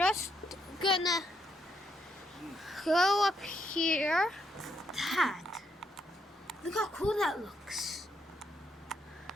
gonna go up here. That. Look how cool that looks.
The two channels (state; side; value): normal; both; correlation 0.77